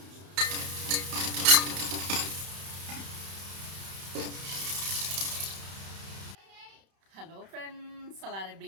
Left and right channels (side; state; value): left; late; 31 ms